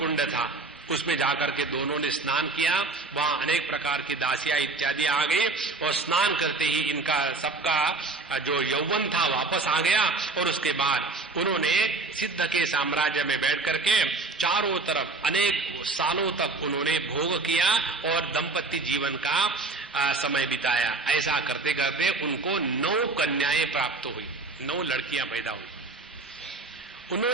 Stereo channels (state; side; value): quieter; left; 3.6 dB